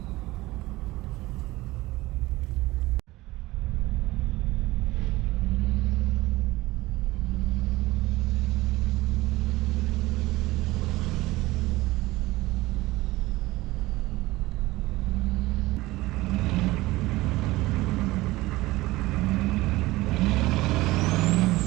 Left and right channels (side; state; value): left; quieter; 19.1 dB